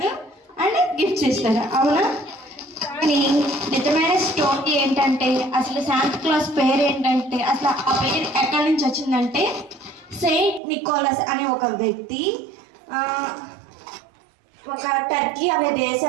అండ్ గిఫ్ట్స్ ఇస్తాడు, అవునా? కానీ నిజమైన స్టోరీ ఏంటంటే, అసలు శాంటా క్లాస్ పేరు ఏంటంటే, అసలు ఆ పేరు ఎక్కడి నుంచి వచ్చిందంటే, సెయింట్ నికోలస్ అనే ఒక వ్యక్తి ఒక టర్కీ అనే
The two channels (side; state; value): left; drops out; at 10.6 s